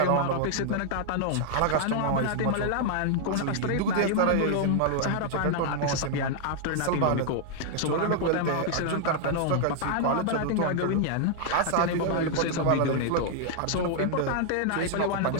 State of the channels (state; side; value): different; both; correlation -0.01